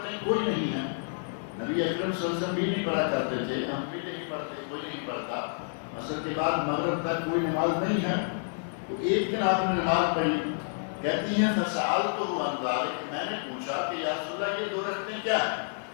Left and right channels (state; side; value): silent; right; digital silence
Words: کوئی نہیں ہیں، نبی اکرم صلی اللہ علیہ وسلم بھی نہیں پڑھا کرتے تھے، ہم بھی نہیں پڑھتے، کوئی نہیں پڑھتا، عصر کے بعد مغرب تک کوئی نماز نہیں ہے۔ تو ایک دن آپ نے نماز پڑھی، کہتی ہیں فسألتہ عن ذلک، میں نے پوچھا کہ یا رسول اللہ یہ 2 رکعتیں کیا ہیں؟